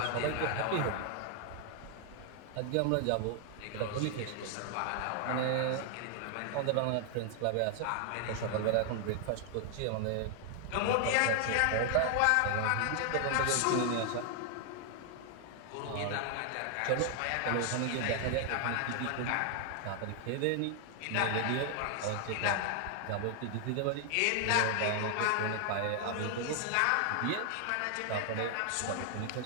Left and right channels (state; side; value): different; both; correlation 0.00